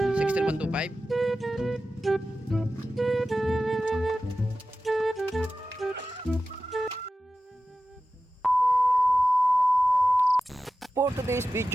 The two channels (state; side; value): normal; both; correlation 0.94